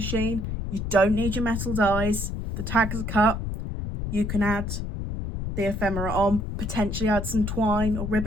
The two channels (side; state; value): left; noise; rumble, 4 dB below the sound